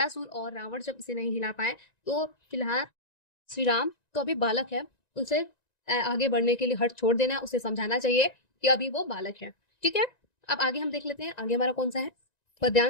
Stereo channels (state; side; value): late; right; 1.9 ms